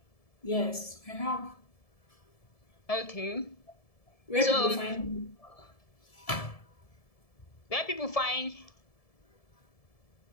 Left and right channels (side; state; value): right; late; 1.7 ms